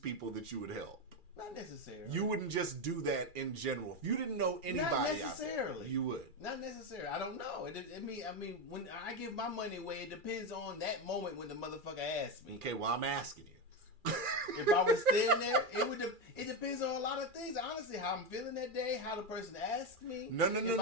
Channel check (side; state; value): left; late; 2.4 ms